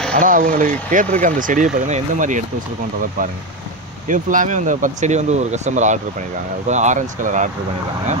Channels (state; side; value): normal; both; correlation 0.13